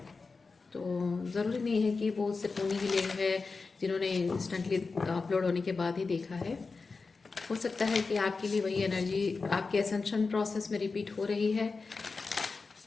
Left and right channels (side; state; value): right; quieter; 4.3 dB